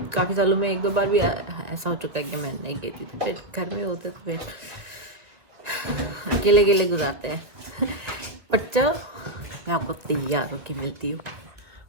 काफ़ी सालों में 1-2 बार भी ऐसा हो चुका है कि मैं नहीं गई थी। तो फिर घर में होते तो फिर अकेले अकेले गुजारते हैं। बट चलो, मैं आपको तैयार होके मिलती हूँ।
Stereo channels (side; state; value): left; late; 2.2 ms